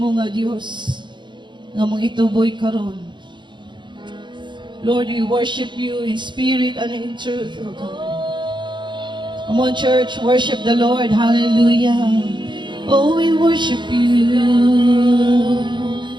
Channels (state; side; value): late; left; 0.23 ms